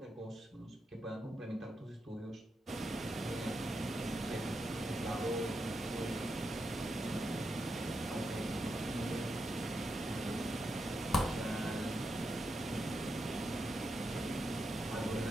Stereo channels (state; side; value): normal; both; correlation 0.85